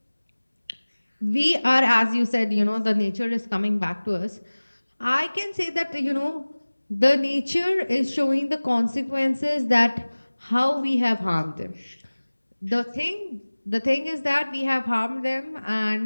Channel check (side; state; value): both; inverted; correlation -1.00